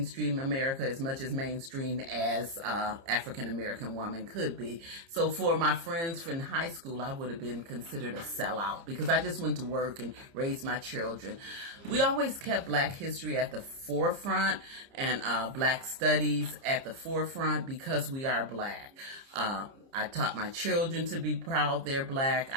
America, as much as mainstream as African American woman could be. So for my friends from high school, I would have been considered a sellout because I just went to work and raised my children. We always kept Black history at the forefront and Black studies at the forefront because we are Black. I taught my children to be proud they're Black.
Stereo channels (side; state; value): left; late; 30 ms